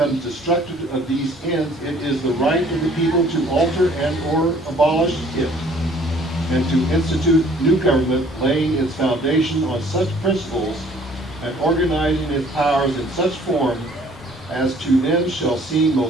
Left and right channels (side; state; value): both; normal; correlation 0.57